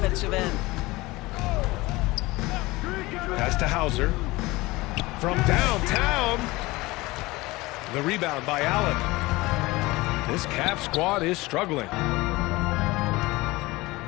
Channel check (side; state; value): right; quieter; 21.0 dB